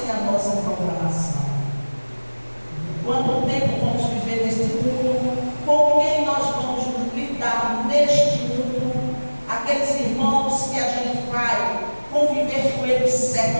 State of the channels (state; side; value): inverted; both; correlation -1.00